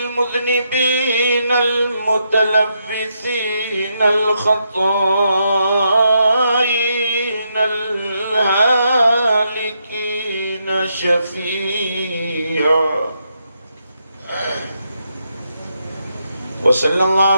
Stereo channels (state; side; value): inverted; both; correlation -0.80